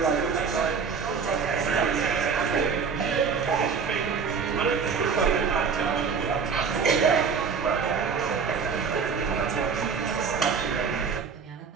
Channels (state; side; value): quieter; left; 5.8 dB